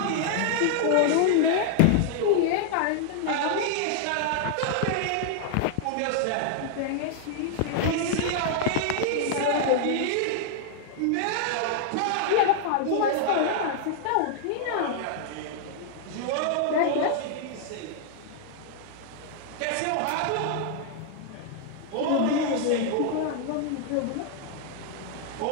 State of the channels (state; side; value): different; both; correlation 0.00